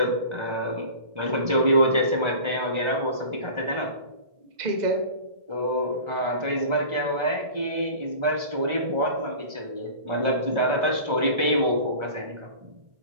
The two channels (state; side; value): late; left; 1.3 ms